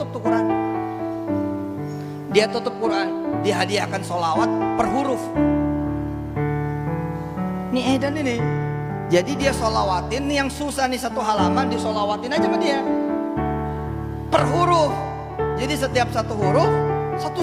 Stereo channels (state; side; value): identical; both; correlation 1.00